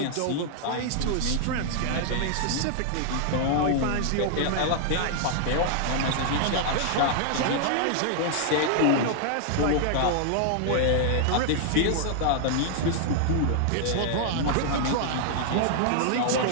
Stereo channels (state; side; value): different; both; correlation -0.01